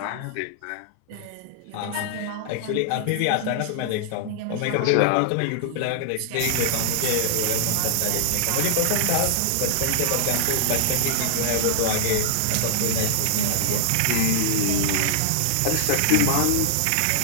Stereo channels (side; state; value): both; different; correlation -0.01